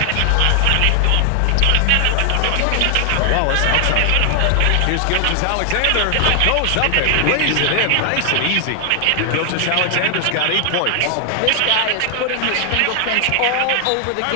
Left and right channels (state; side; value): different; both; correlation 0.00